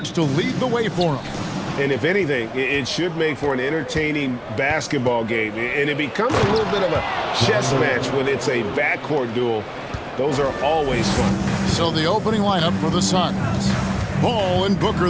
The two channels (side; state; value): both; identical; correlation 1.00